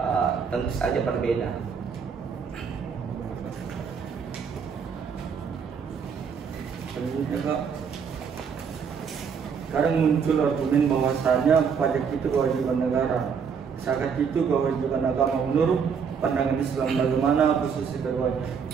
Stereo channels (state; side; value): quieter; left; 6.5 dB